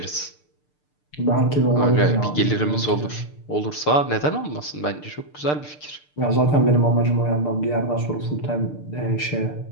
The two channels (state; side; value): late; right; 6.7 ms